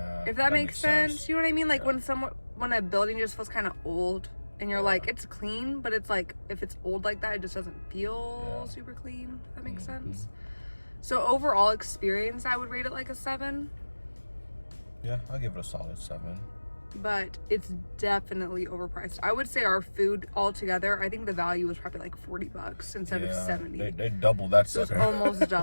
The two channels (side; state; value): both; inverted; correlation -1.00